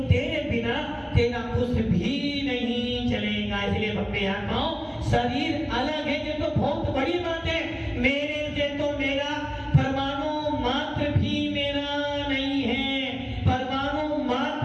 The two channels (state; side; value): identical; both; correlation 1.00